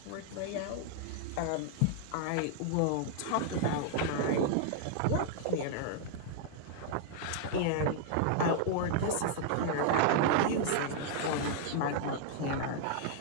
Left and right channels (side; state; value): both; different; correlation -0.01